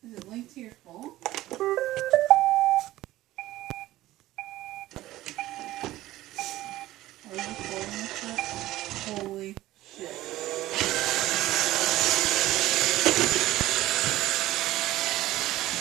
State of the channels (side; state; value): left; quieter; 16.0 dB